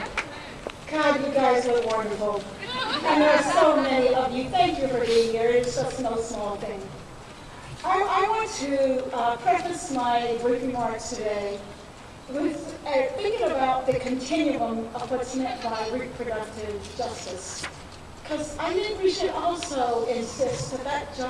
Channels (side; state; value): both; identical; correlation 1.00